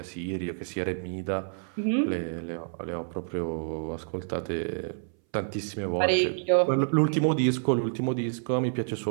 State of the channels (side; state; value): left; silent; 59 dB below the other